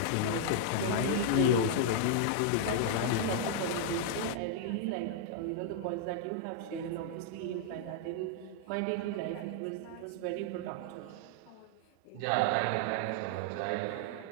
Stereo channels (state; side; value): different; both; correlation -0.01